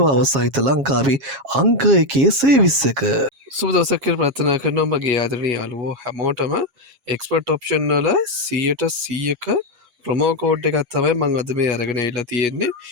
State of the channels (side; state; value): left; late; 7.4 ms